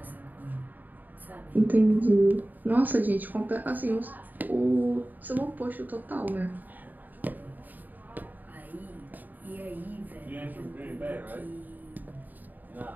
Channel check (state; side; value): late; left; 0.086 ms